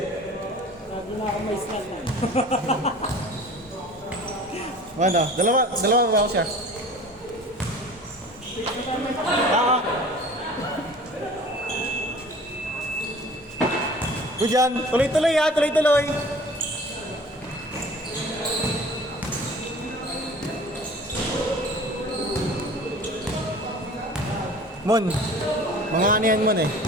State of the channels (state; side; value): normal; both; correlation 0.44